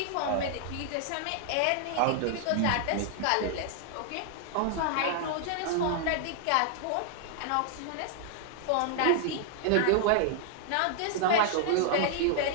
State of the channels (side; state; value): both; different; correlation -0.01